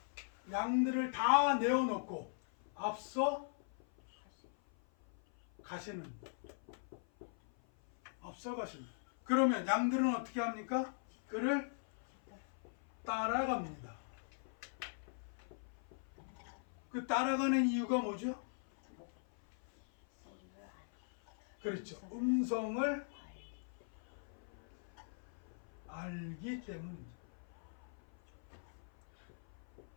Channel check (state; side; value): silent; right; 51 dB below the other